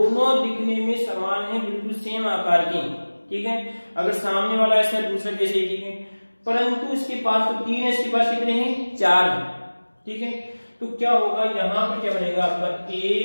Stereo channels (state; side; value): inverted; both; correlation -1.00